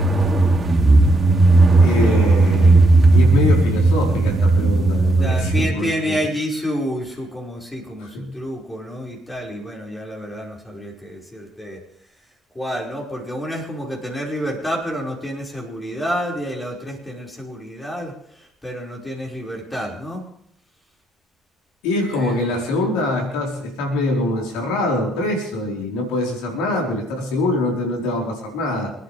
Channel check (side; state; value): both; normal; correlation 0.74